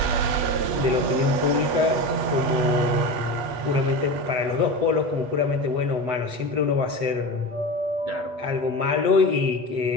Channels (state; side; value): late; left; 8.5 ms